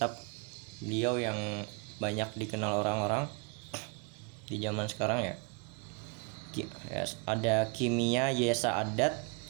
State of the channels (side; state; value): left; quieter; 30.9 dB